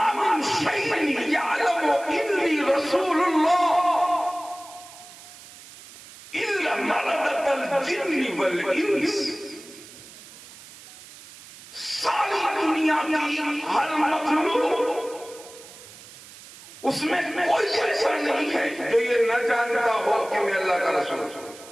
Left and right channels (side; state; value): right; noise; hiss, 19 dB below the sound